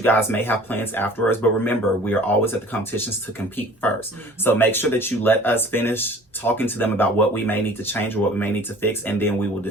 guys may have plans afterwards, but remember, we are always at the competitions to compete first. So make sure that you let us finish talking to them about what we may need to change or what we may need to fix, and then we will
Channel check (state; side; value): normal; both; correlation 0.48